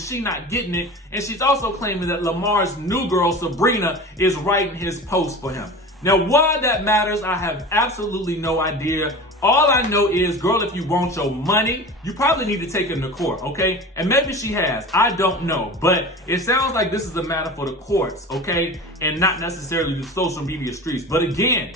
not getting it. And she's also claiming that Lamar's new girl, Sabrina, is writing his post for him. Now, why that matters, I have absolutely no idea. All I know is, girl, if you want your money, you probably need to take him to court, okay? And maybe she has. I don't know. But it sounds like this is a matter for the courts, okay? And not necessarily the social media streets. But again,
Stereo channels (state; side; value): normal; both; correlation 0.34